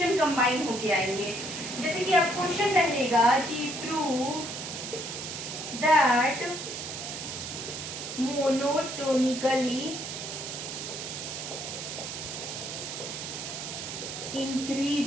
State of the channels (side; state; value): right; noise; hiss, 7 dB below the sound